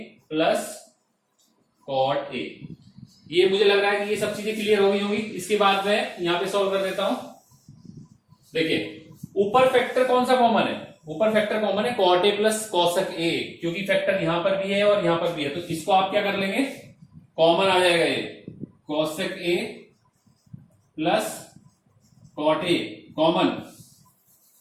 प्लस कॉट ए। ये मुझे लग रहा है कि ये सब चीजें क्लियर हो गई होंगी। इसके बाद मैं यहां पे सॉल्व कर देता हूं। देखिए ऊपर फैक्टर कौन सा कॉमन है? ऊपर फैक्टर कॉमन है cot A plus cosec A, क्योंकि फैक्टर यहां पर भी है और यहां पर भी है। तो इसको आप क्या कर लेंगे? कॉमन आ जाएगा ये cosec A plus cot A common.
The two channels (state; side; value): identical; both; correlation 1.00